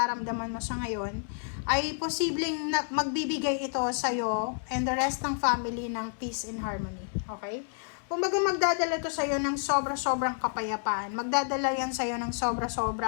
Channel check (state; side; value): silent; right; 58 dB below the other